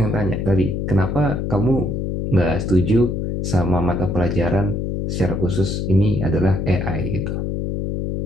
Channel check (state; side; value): noise; left; hum, 2 dB below the sound